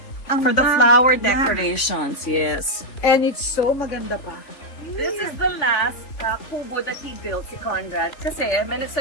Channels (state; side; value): late; right; 3.5 ms